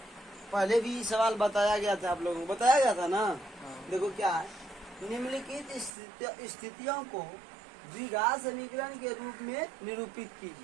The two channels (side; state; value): left; drops out; at 5.9 s